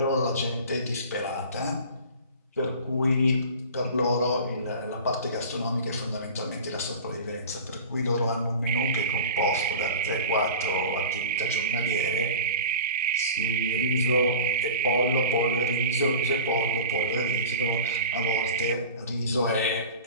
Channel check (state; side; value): inverted; both; correlation -0.36